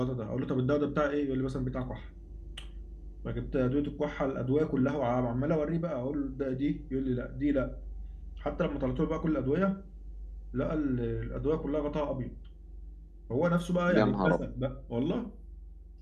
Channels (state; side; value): identical; both; correlation 1.00